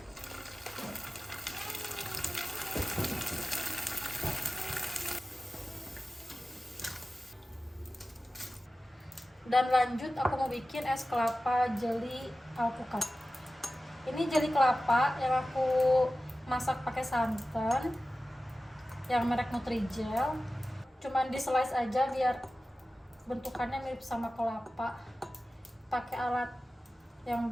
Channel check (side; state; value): both; normal; correlation 0.95